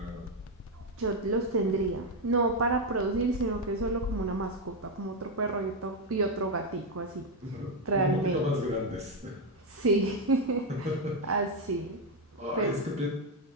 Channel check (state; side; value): normal; both; correlation 0.05